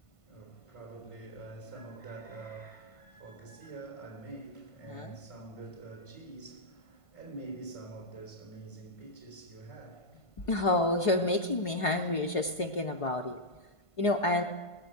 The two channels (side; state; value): right; late; 1.5 ms